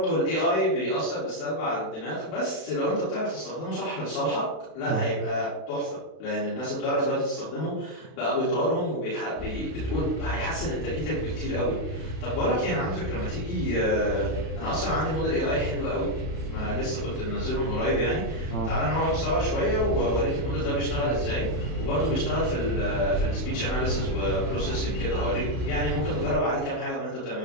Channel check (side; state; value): right; late; 32 ms